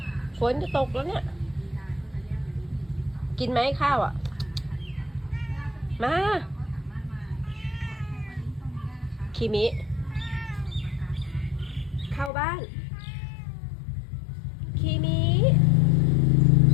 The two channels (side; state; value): right; drops out; at 12.3 s